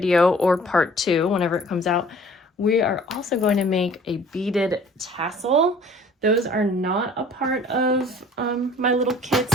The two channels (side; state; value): both; normal; correlation 0.51